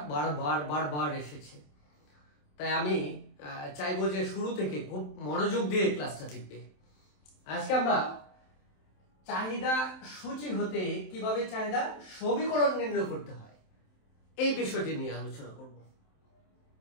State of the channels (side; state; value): right; late; 27 ms